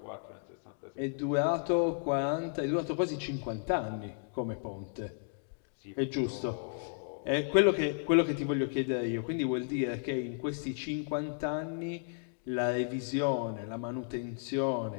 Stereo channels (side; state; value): right; silent; digital silence